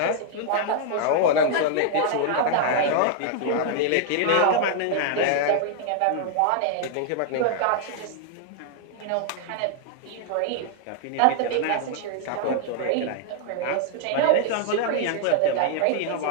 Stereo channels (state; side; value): different; both; correlation 0.00